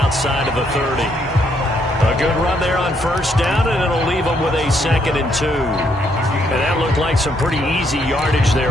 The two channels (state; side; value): normal; both; correlation 0.73